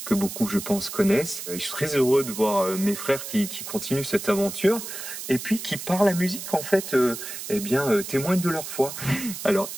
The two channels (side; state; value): right; noise; hiss, 8 dB below the sound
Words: que beaucoup, je pense, connaissent. Je suis très heureux de voir mes frères qui continuent cette aventure et puis qui, par la musique, en fait, témoignent de leur foi. Alors,